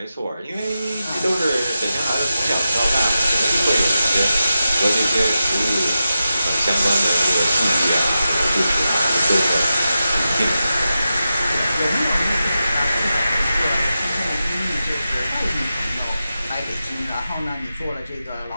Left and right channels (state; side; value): inverted; both; correlation -0.91